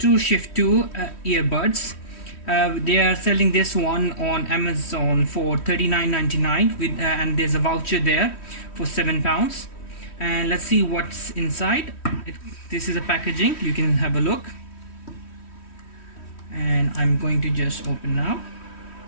earbuds. They are selling this one on Amazon for $39.99 with and there's a voucher there for £7. And let's see what's inside. This is a packaging, you can have a look, and I'm going to just open now.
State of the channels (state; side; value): late; right; 3.1 ms